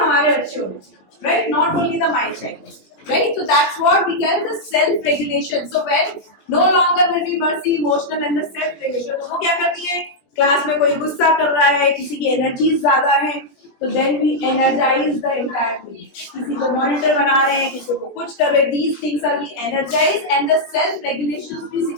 बच्चे होंगे, right? Not only the my child, right? So that's what we can the self regulation. So when no longer will be mercy, emotional and the self regulation. तो वो क्या करती है? क्लास में कोई गुस्सा कर रहा है, किसी की एनर्जी ज्यादा है, तो then we energize the entire team. किसी को मॉनिटर बना रहे हैं, किसी को कुछ कर रहे हैं, these things are we energize and the self regulation भी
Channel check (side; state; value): right; late; 20 ms